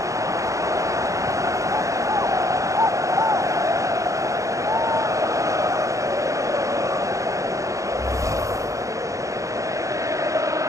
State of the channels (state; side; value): late; left; 0.15 ms